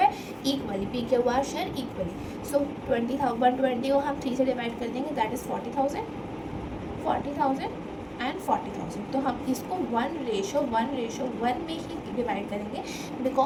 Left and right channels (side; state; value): both; identical; correlation 1.00